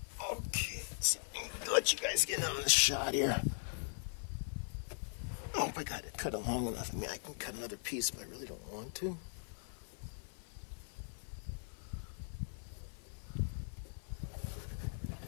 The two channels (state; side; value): silent; right; 51 dB below the other